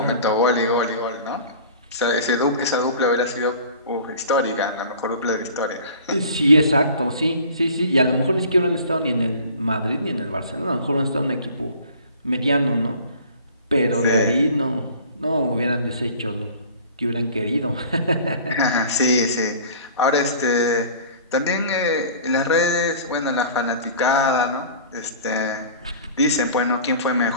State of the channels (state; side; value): inverted; both; correlation -0.45